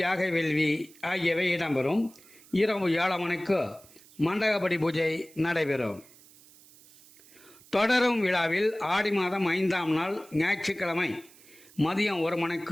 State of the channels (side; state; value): right; noise; hiss, 24 dB below the sound